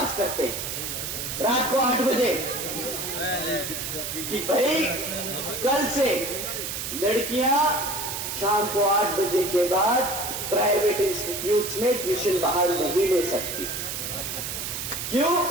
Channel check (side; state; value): right; noise; hiss, 4 dB below the sound